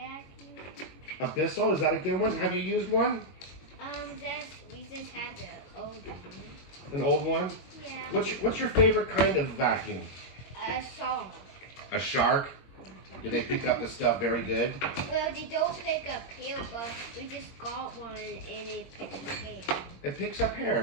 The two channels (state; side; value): late; right; 22 ms